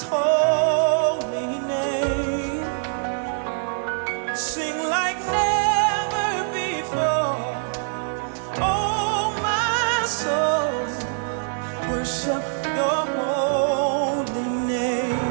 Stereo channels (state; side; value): silent; left; digital silence